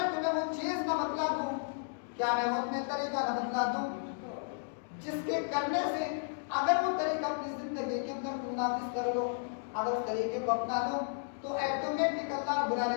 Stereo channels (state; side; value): silent; right; digital silence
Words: تمہیں وہ چیز نہ بتلا دوں، کیا میں وہ تمہیں طریقہ نہ بتلا دوں جس کے کرنے سے اگر وہ طریقہ اپنی زندگی کے اندر تم نافذ کر لو، اگر اس طریقے کو اپنا لو تو ایٹومیٹک اللہ رب